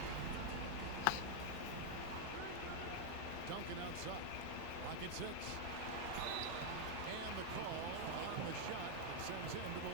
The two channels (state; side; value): different; both; correlation 0.00